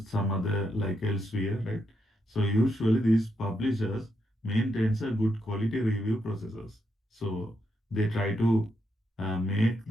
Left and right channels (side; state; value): both; normal; correlation 0.81